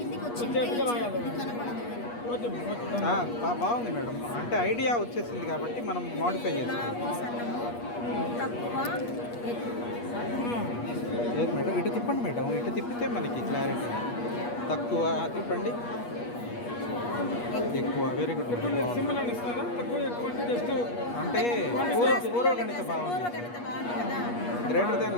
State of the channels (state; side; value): late; right; 8.4 ms